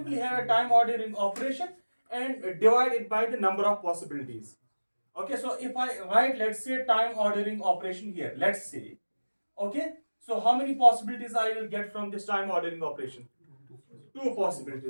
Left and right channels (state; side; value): inverted; both; correlation -1.00